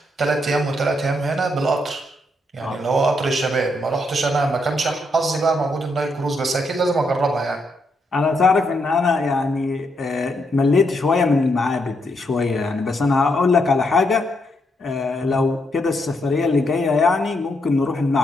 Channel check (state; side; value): normal; both; correlation 0.78